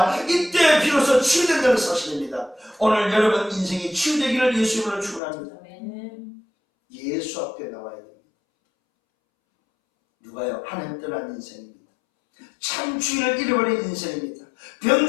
이때 비로소 치유된다는 사실입니다. 오늘 여러분 인생이 치유되기를 예수 이름으로 축원합니다. 예수 앞에 나와야 됩니다. 누가요? 하나님 떠난 인생입니다. 참 주인을 잃어버린 인생입니다.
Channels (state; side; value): drops out; right; at 5.2 s